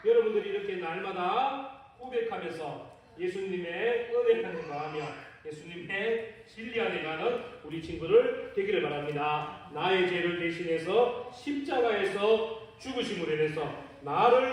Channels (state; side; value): identical; both; correlation 1.00